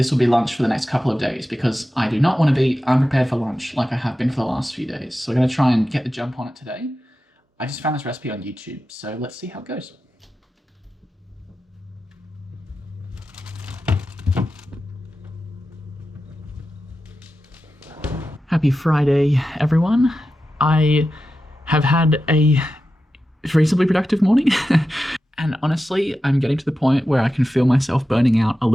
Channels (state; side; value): normal; both; correlation 0.91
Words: will be lunch for the next couple of days because I do not want to be unprepared for lunch like I have been for the last few days. So we're going to try and get the jump on it today. I just found this recipe on YouTube, so let's see how it goes. Happy Friday, everyone. I have had a reasonably productive morning. And honestly, I'm getting to the point where I can feel myself burning out a